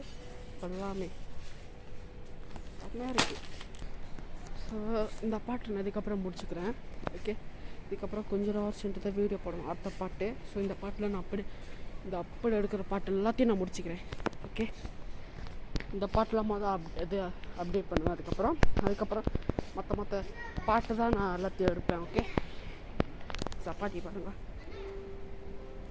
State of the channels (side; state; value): both; identical; correlation 1.00